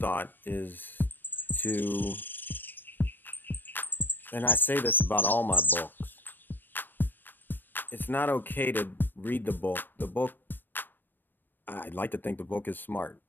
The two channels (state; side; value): late; right; 0.093 ms